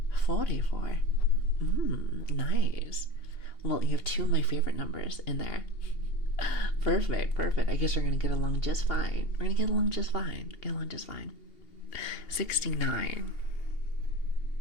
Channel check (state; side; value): late; right; 2.8 ms